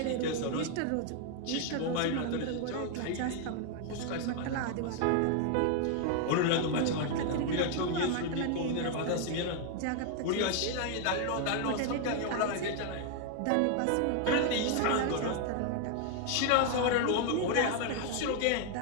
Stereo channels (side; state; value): both; different; correlation 0.00